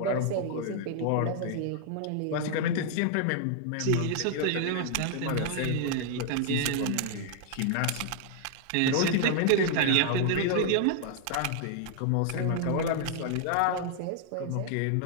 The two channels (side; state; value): both; different; correlation 0.00